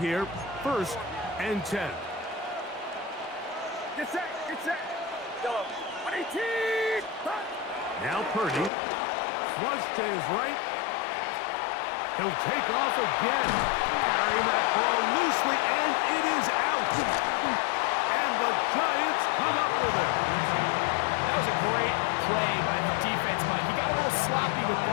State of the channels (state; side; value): drops out; right; at 8.7 s